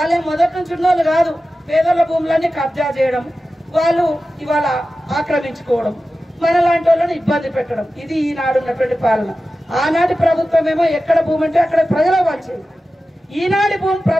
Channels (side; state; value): both; normal; correlation 0.94